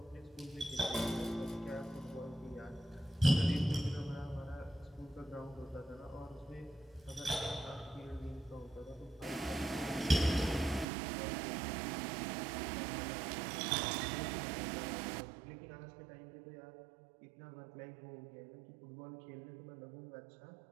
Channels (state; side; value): drops out; left; at 10.9 s